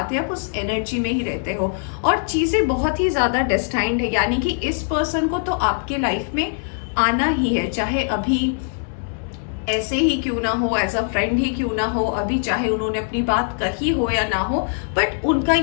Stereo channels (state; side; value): silent; right; digital silence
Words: आप उस एनर्जी में ही रहते हो, और चीजें बहुत ही ज्यादा डेस्टाइंड है। यानी कि इस पर्सन को तो आपके लाइफ में आना ही है, चाहे अभी ऐसे ही क्यों ना हो, एज अ फ्रेंड ही क्यों ना हो, अभी चाहे उन्होंने अपनी बात कही हो या ना हो, बट उनका